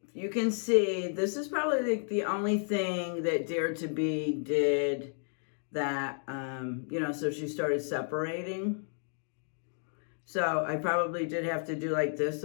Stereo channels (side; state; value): right; silent; 56 dB below the other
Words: you can see this is probably the only thing that Dare to Be did that, you know, so she started separating. So I probably did have to do like this,